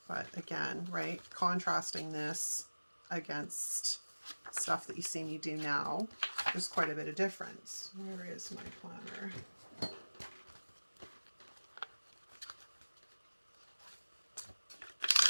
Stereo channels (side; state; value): both; inverted; correlation -1.00